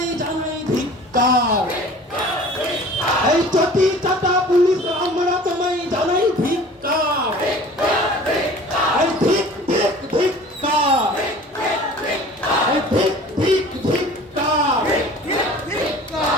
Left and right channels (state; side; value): normal; both; correlation 0.45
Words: জানাই ধিক্কার। এই চটি চাটা পুলিশ আমরা তোমায় জানাই ধিক্কার। এই ধিক ধিক ধিক্কার। এই ধিক ধিক ধিক্কার।